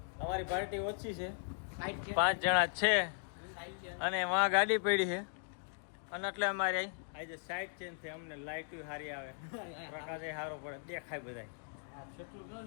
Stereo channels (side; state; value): right; silent; digital silence